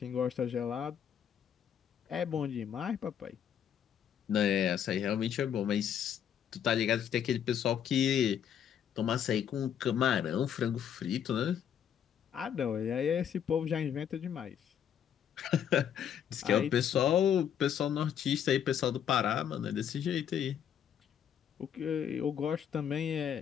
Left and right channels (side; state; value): right; quieter; 9.0 dB